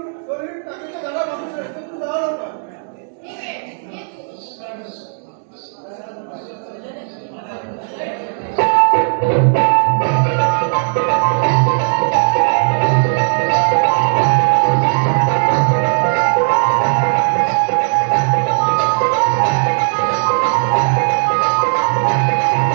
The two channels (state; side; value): silent; left; digital silence